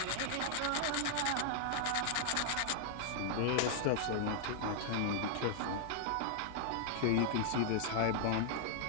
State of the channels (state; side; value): different; both; correlation -0.01